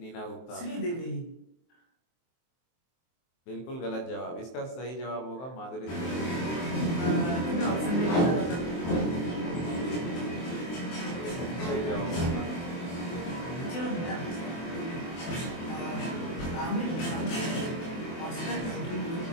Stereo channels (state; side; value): late; right; 23 ms